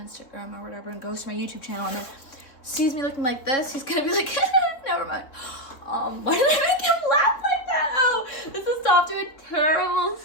or whatever and goes to my YouTube channel and then sees me looking like this. He's gonna be like, never mind. Why did I make him laugh like that? Oh, this is off to a terrible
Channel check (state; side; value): late; right; 3.7 ms